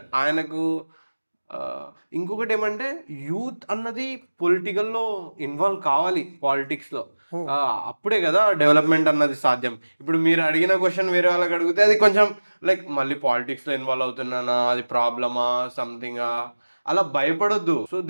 ఆయనకు ఇంకొకటి ఏమంటే యూత్ అన్నది పొలిటికల్లో ఇన్వాల్వ్ కావాలి, పాలిటిక్స్లో. అప్పుడే కదా డెవలప్మెంట్ అన్నది సాధ్యం. ఇప్పుడు మీరు అడిగిన క్వశ్చన్ వేరే వాళ్ళకి అడిగితే అది కొంచెం లైక్ మళ్ళీ పాలిటిక్స్లో ఇన్వాల్వ్ అవుతున్నానా, అది ప్రాబ్లమా, సంథింగా, అలా భయపడొద్దు. సో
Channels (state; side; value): inverted; both; correlation -1.00